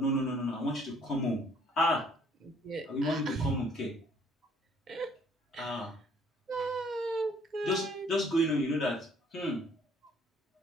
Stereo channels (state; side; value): normal; both; correlation 0.60